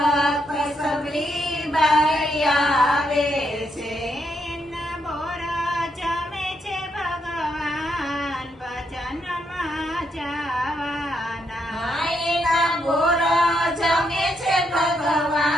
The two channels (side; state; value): both; normal; correlation 0.77